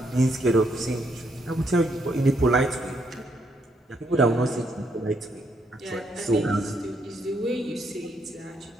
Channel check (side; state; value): both; normal; correlation 0.75